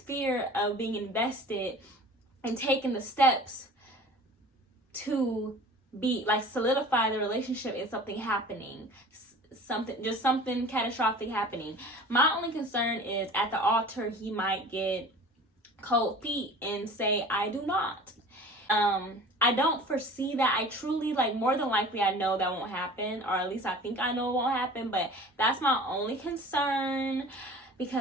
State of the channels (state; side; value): normal; both; correlation 0.43